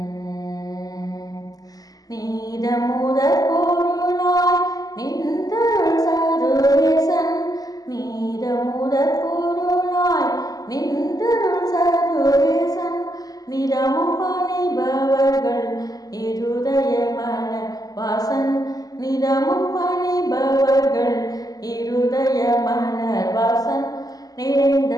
நீதமுதற் பொருளாய் நின்றருள் சர்வேசன். நீதமுதற் பொருளாய் நின்றருள் சர்வேசன். நிதமும் பணிபவர்கள் இருதய மலர் வாசன். நிதமும் பணிபவர்கள் இருதய மலர் வாசன். நிறைந்த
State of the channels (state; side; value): late; right; 0.18 ms